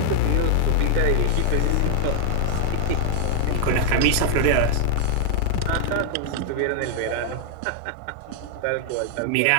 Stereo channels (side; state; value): both; different; correlation 0.00